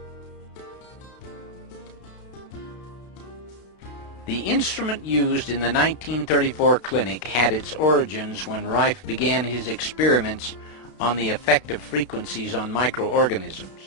The instrument used in the 1934 clinic had its origins when Rife began his experiments on the effect of frequencies on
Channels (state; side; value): late; right; 32 ms